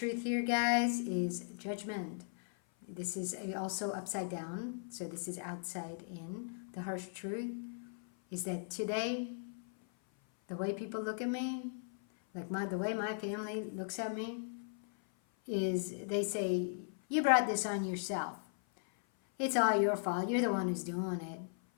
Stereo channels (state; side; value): silent; right; 53 dB below the other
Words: here, guys, is judgment. This is also upside down, so this is outside in. The harsh truth is that today, the way people look at me, Like the way my family looks at me is they say, you brought this on yourself. It's all your fault. You're the one who's doing it.